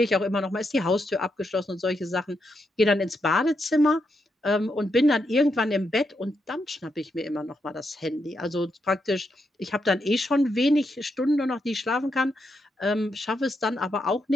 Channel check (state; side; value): normal; both; correlation 0.82